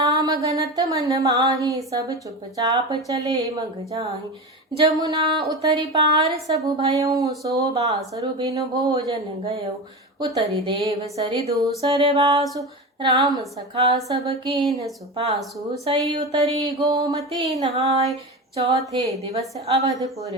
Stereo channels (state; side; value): normal; both; correlation 0.25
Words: गनत मन माही, सब चुपचाप चले मग जाहि। जमुना उतरि पार सबु भयउ, सो बासुर बिनु भोजन गयउ। उतरि देव सरि दूसर वासु, राम सखा सब कीन्ह सुपासु। सई उतरी गोमती नहाय, चौथे दिवस अवधपुर